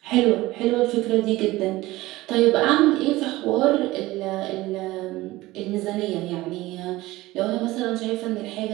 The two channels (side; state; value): left; quieter; 18.5 dB